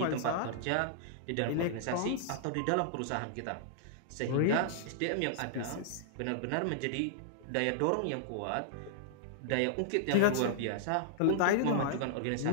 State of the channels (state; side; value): different; both; correlation -0.01